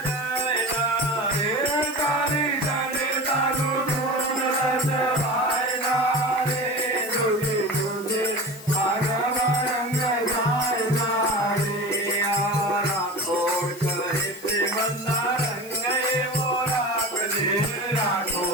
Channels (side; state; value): left; noise; hiss, 17 dB below the sound